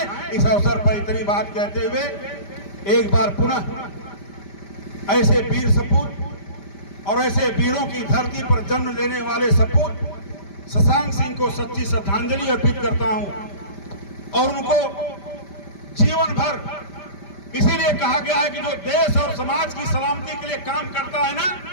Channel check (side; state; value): right; late; 5.1 ms